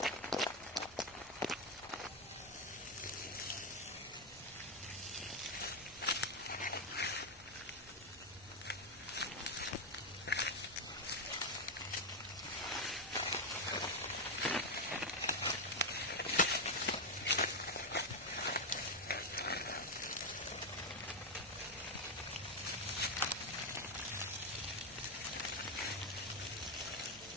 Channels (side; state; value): both; normal; correlation 0.05